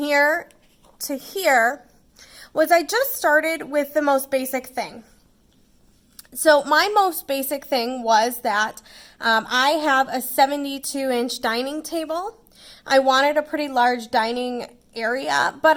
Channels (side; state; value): both; identical; correlation 1.00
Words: to here was I just started with the most basic thing. So my most basic thing was that I have a 72-inch dining table. I wanted a pretty large dining area, but